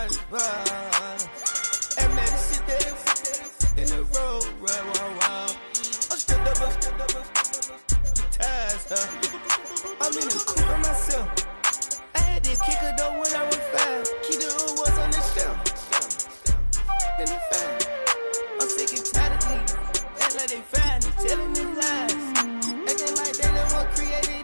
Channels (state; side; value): inverted; both; correlation -1.00